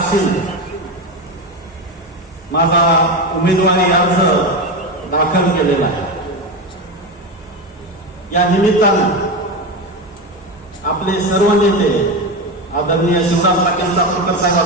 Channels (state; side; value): normal; both; correlation 0.18